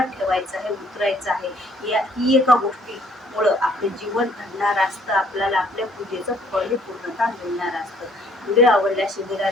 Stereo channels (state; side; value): normal; both; correlation 0.62